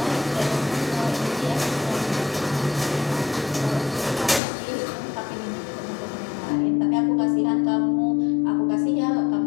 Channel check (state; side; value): drops out; right; at 4.4 s